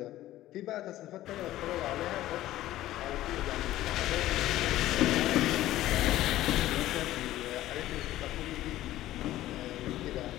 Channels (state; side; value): quieter; right; 14.7 dB